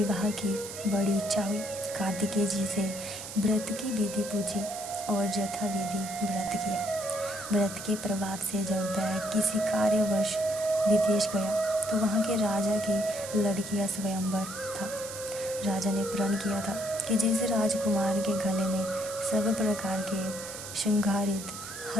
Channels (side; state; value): right; noise; hiss, 10 dB below the sound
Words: की बड़ी इच्छा हुई। कार्तिकेय जी से व्रत की विधि पूछी और यथाविधि व्रत किया। व्रत के प्रभाव से जब वह किसी कार्यवश विदेश गया तो वहाँ के राजा की लड़की का स्वयंवर था। राजा ने प्रण किया था कि जिस राजकुमार के गले में सब प्रकार के श्रृंगारित